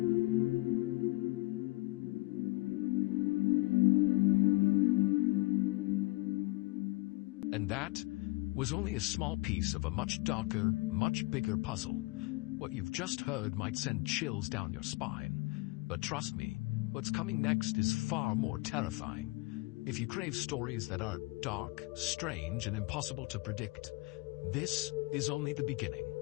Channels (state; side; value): quieter; right; 24.0 dB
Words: And that was only a small piece of a much darker, much bigger puzzle. What you've just heard might send chills down your spine. But trust me, what's coming next is far more terrifying. If you crave stories that are dark, strange, and impossible to predict, this is only the beginning.